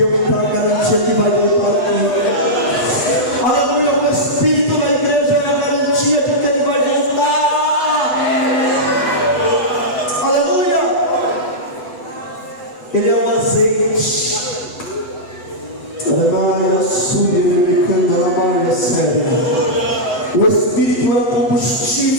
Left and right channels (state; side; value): late; right; 8.1 ms